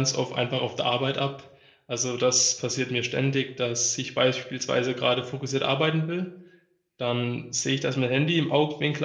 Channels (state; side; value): identical; both; correlation 1.00